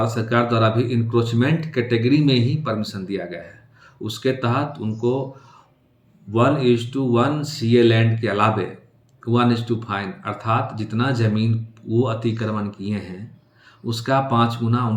सरकार द्वारा भी इंक्रोचमेंट कैटेगरी में ही परमिशन दिया गया है। उसके तहत उनको 1:1 CA लैंड के अलावे 1:5 अर्थात जितना ज़मीन वो अतिक्रमण किए हैं उसका 5 गुना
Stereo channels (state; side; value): identical; both; correlation 1.00